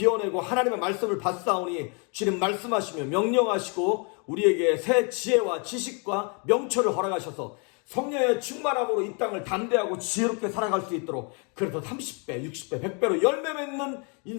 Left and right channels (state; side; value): quieter; right; 35.6 dB